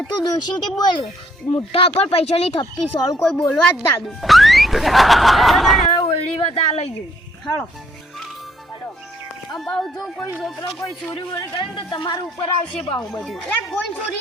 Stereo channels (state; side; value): normal; both; correlation 0.68